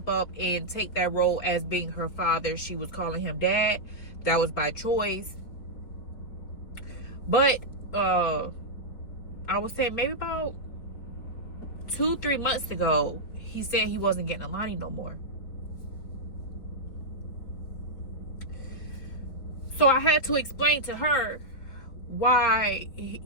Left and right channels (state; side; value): late; right; 4.5 ms